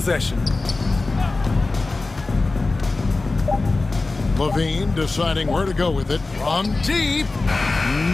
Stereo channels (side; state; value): right; quieter; 3.4 dB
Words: Levine deciding where to go with it. From deep.